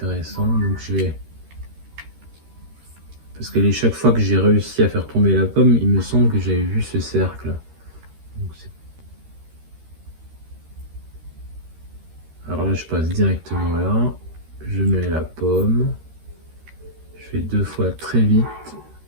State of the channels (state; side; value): late; left; 13 ms